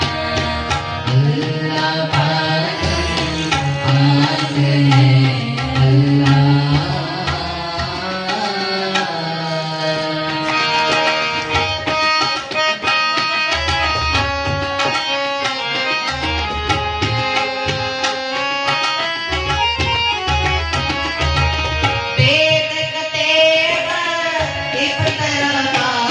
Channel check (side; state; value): both; identical; correlation 1.00